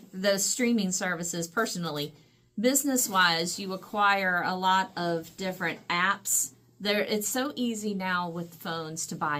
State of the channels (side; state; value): both; identical; correlation 1.00